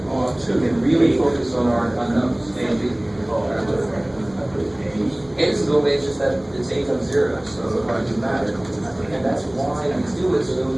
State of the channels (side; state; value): left; noise; rumble, 28 dB below the sound